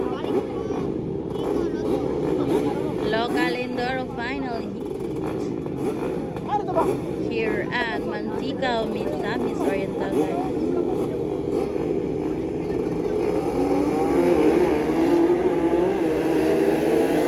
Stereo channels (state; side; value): identical; both; correlation 1.00